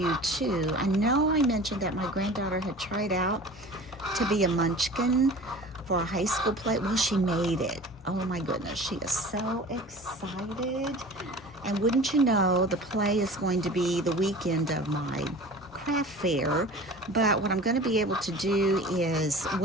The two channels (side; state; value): both; normal; correlation 0.40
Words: too. I know I mentioned that my granddaughter had tried out to be a munchkin for a high school play. Well, she made it. Oh my goodness, she is so excited. And wouldn't you know, the play is going to be the weekend of my craft fair. But what I'm going to be able to do is